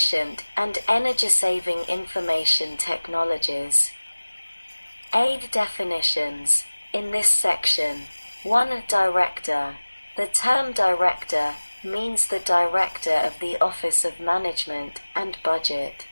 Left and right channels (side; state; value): both; inverted; correlation -1.00